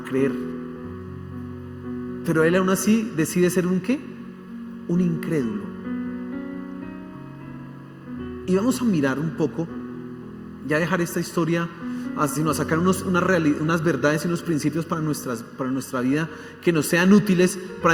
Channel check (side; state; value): both; identical; correlation 1.00